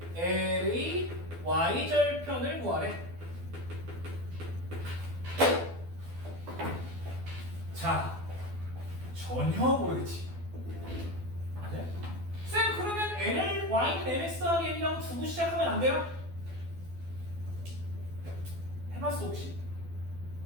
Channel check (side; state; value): left; late; 12 ms